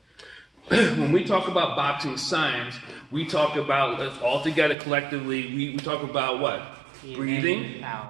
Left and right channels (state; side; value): drops out; left; at 4.8 s